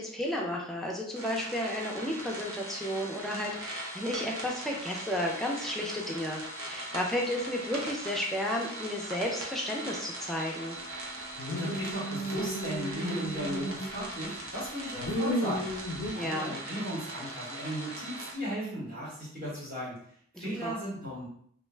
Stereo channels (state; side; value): normal; both; correlation 0.40